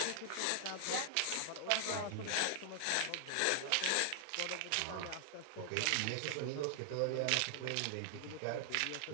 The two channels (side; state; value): both; different; correlation 0.00